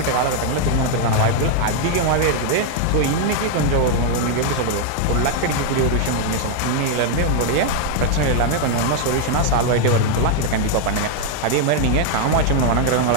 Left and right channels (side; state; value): both; different; correlation 0.00